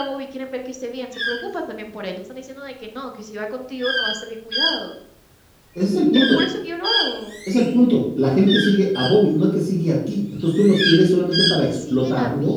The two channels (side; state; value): both; identical; correlation 1.00